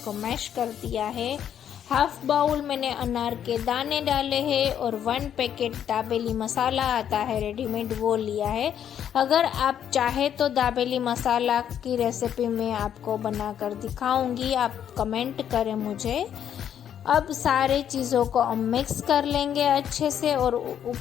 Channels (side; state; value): right; quieter; 9.4 dB